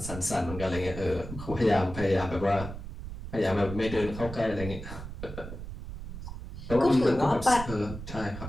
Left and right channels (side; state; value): right; noise; rumble, 10 dB below the sound